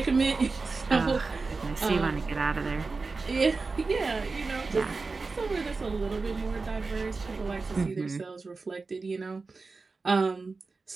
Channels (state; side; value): quieter; left; 4.1 dB